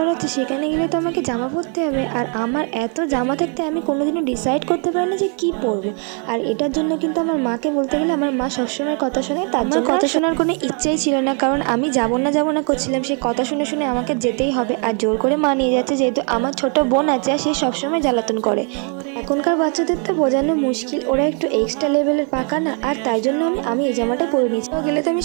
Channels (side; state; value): left; quieter; 39.8 dB